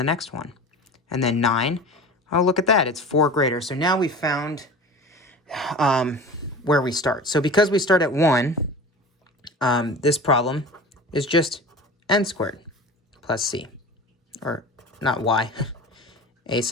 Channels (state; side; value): normal; both; correlation 0.35